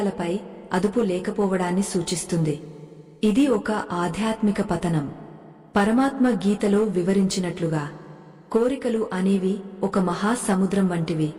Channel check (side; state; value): both; identical; correlation 1.00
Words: అదుపు లేకపోవడాన్ని సూచిస్తుంది. ఇది ఒక ఆధ్యాత్మిక పతనం. పరమాత్మ గీతలో వివరించినట్లుగా కోరికలు అనేవి ఒక మహాసముద్రం వంటివి.